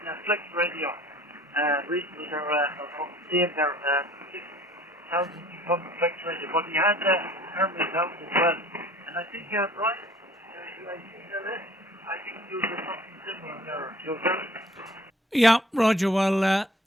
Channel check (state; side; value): normal; both; correlation 0.51